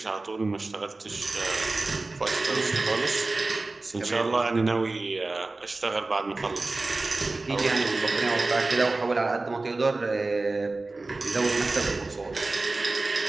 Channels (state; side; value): quieter; left; 3.3 dB